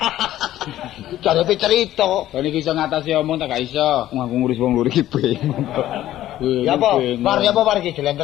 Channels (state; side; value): quieter; right; 13.6 dB